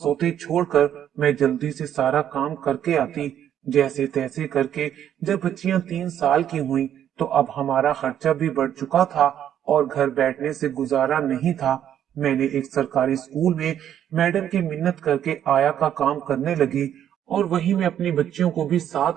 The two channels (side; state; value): left; quieter; 10.2 dB